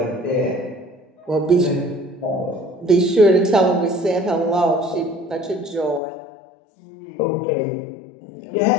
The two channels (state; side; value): drops out; right; at 6.0 s